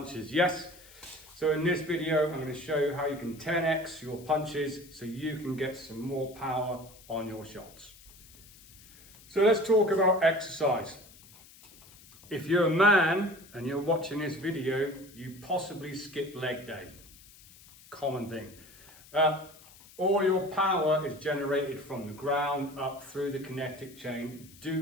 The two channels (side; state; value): left; noise; hiss, 22 dB below the sound